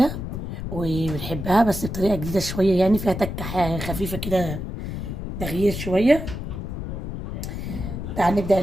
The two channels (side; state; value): left; noise; rumble, 6 dB below the sound